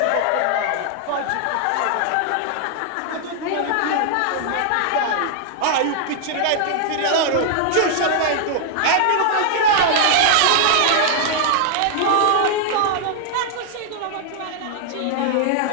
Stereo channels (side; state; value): both; different; correlation 0.00